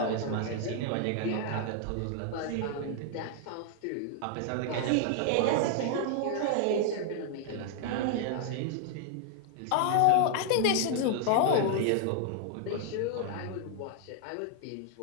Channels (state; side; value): different; both; correlation 0.00